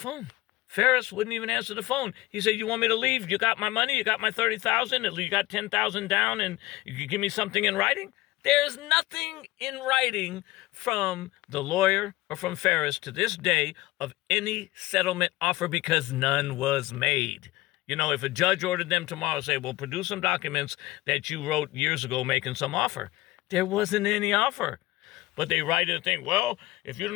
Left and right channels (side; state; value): right; quieter; 18.8 dB